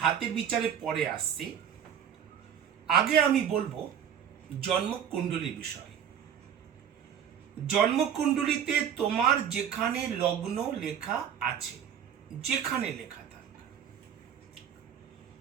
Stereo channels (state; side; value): quieter; left; 8.8 dB